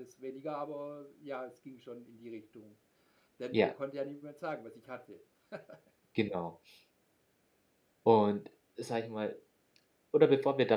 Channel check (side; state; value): both; identical; correlation 1.00